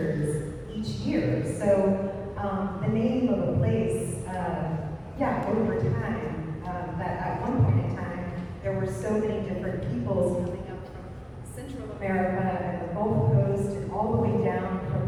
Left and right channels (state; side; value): identical; both; correlation 1.00